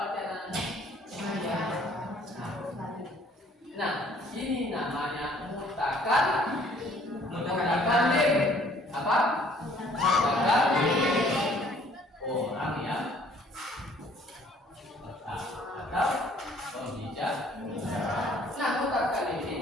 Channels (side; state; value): both; normal; correlation 0.59